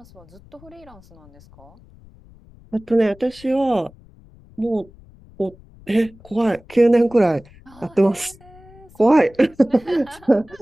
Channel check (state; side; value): noise; left; rumble, 24 dB below the sound